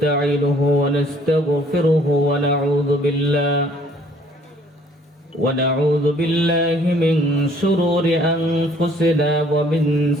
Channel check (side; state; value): both; normal; correlation 0.59